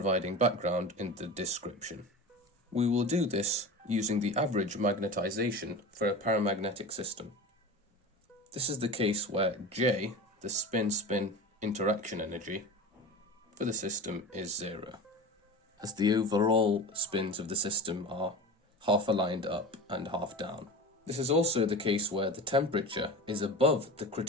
background in the description. We will do this using the average magnetization for a paramagnetic system. This is the case where J, the spin-spin interaction energy, for the system is zero, as the overall spins of the system are half aligned up and half down. This is also the case where the temperature is above the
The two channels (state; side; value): normal; both; correlation 0.31